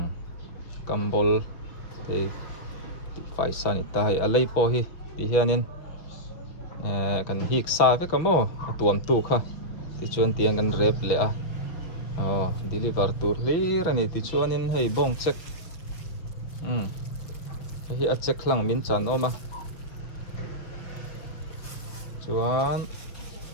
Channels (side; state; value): right; late; 5.6 ms